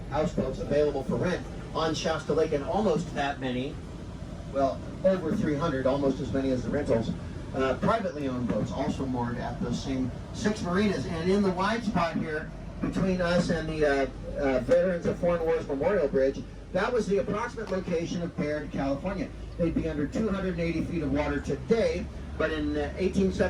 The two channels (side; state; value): both; identical; correlation 1.00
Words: houseboats available for rent on Shasta Lake, and almost that many, well, over 300, almost as many as the rentals, privately owned boats also moored at those same 6 marinas. And in the wide spot here, between us and the Veterans of Foreign Wars Memorial Bridge, that was the approximate location of Baird, California. They'd be under 280 feet of water today, but in